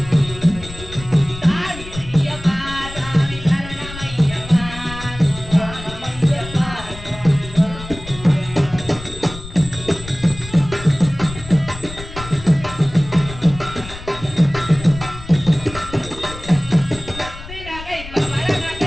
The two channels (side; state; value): left; noise; rumble, 13 dB below the sound